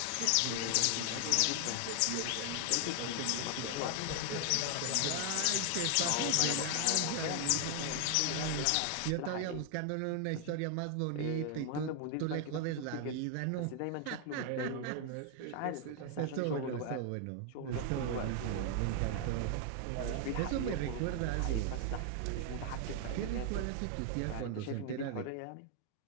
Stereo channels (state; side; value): different; both; correlation 0.00